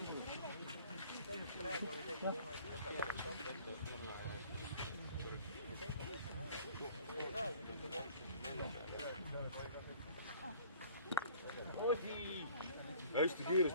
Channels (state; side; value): inverted; both; correlation -0.51